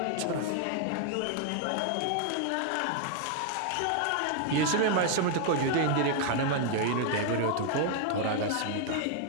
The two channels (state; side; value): different; both; correlation 0.00